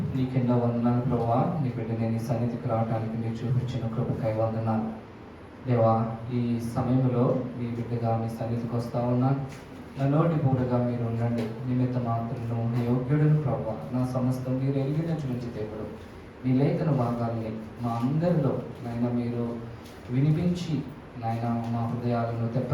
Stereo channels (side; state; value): both; identical; correlation 1.00